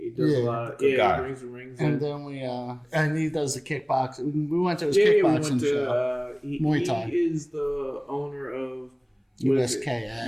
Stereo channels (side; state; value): both; identical; correlation 1.00